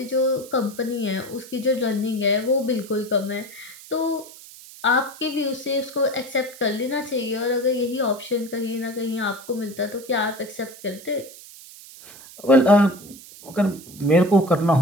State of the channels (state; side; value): noise; right; hiss, 18 dB below the sound